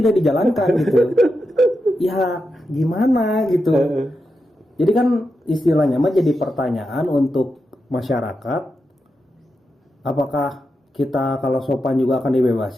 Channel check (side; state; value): both; normal; correlation 0.88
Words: dijalankan gitu? Ya gimana gitu? Jadi kan istilahnya mah jadi pertanyaan untuk masyarakat, apakah kita kalau sopan juga akan